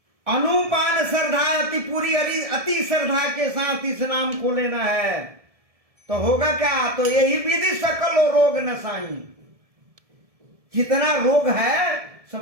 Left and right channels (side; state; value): left; late; 1.7 ms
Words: अनुपान श्रद्धा अति पूरी, अति श्रद्धा के साथ इस नाम को लेना है। तो होगा क्या? तो यही विधि सकल रोग नसाई। जितना रोग है